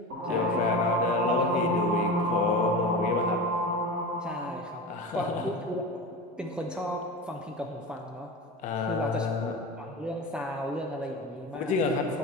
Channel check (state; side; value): normal; both; correlation 0.28